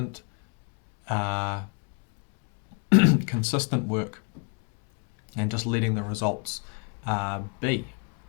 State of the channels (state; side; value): quieter; right; 37.4 dB